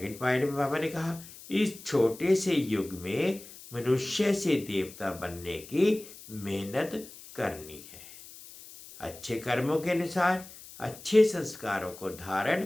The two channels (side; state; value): left; noise; hiss, 17 dB below the sound